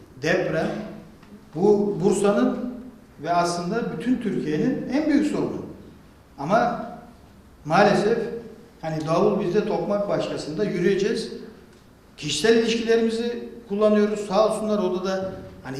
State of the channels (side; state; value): both; identical; correlation 1.00